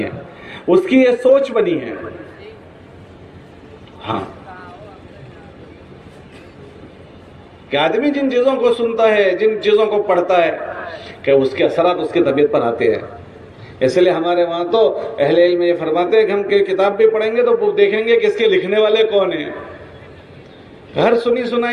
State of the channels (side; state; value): both; identical; correlation 1.00